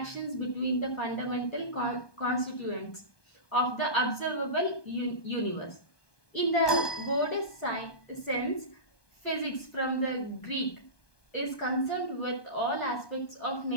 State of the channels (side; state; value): right; late; 1.2 ms